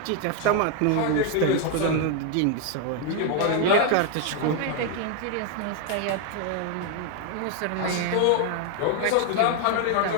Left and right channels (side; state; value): both; different; correlation 0.01